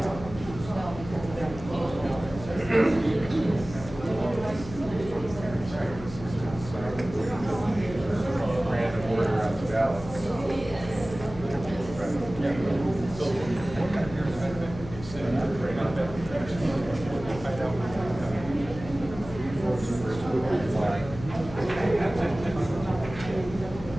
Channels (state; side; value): noise; left; hum, 12 dB below the sound